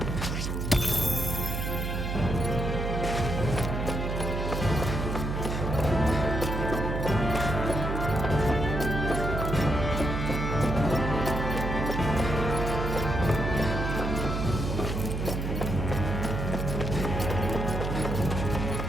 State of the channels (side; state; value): right; noise; hum, 2 dB below the sound